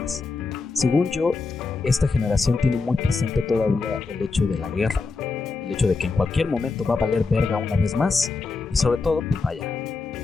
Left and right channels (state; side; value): quieter; right; 4.2 dB